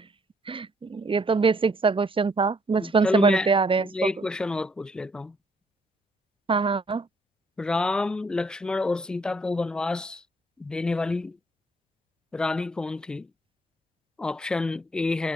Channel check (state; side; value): normal; both; correlation 0.67